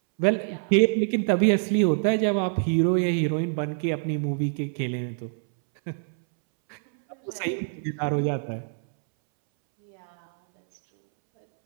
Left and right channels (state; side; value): silent; left; 62 dB below the other